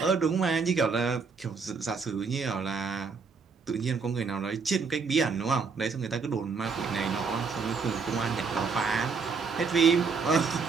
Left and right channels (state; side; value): quieter; left; 5.0 dB